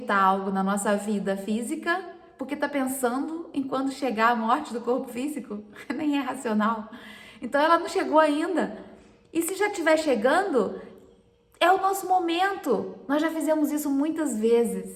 algo na nossa vida física porque está pensando em quando chegar a morte do corpo físico, nem é racional. Então ela não chegou ainda. E se já estiver chegando, é o nosso momento. Nós já fizemos isso muitas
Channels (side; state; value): both; identical; correlation 1.00